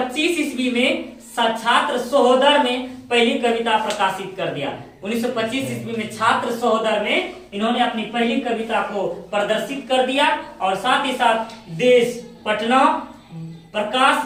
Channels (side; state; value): both; identical; correlation 1.00